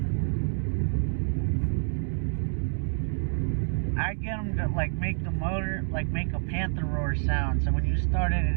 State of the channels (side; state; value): left; silent; 60 dB below the other